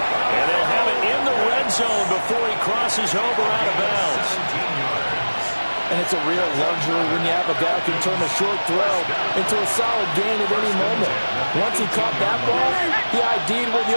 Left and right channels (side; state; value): both; inverted; correlation -1.00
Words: And they'll have it in the red zone before he crosses over out of bounds. 17 yards. And it's a real luxury when you have a guy who can turn a short throw into a solid gain at any moment. Once he caught that ball, he ID'd where the